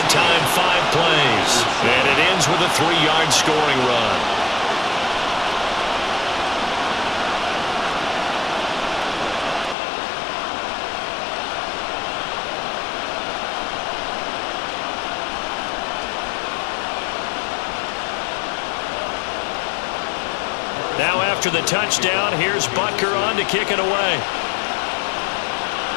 time, 5 plays. And it ends with a 3-yard scoring run. Now after the touchdown, here's Butker on to kick it away.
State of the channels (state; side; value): drops out; right; at 9.8 s